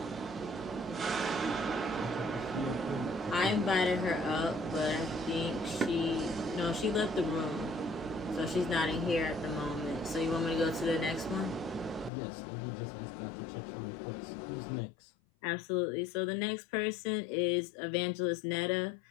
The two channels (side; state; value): right; drops out; at 12.1 s